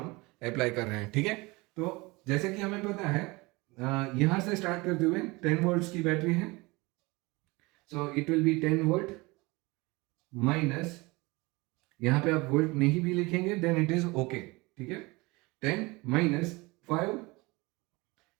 अप्लाई कर रहे हैं. ठीक है, तो जैसे कि हमें पता है यहां से स्टार्ट करते हुए 10 वोल्ट्स की बैटरी है. So it will B 10 volt minus, यहां पे आप वोल्ट नहीं भी लिखेंगे देन इट इज ओके. ठीक है, 10 माइनस 5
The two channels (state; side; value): quieter; left; 24.0 dB